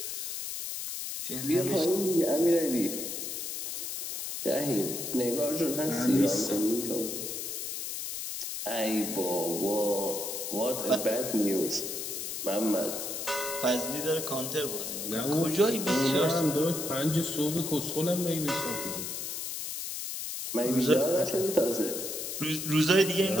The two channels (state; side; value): noise; left; hiss, 5 dB below the sound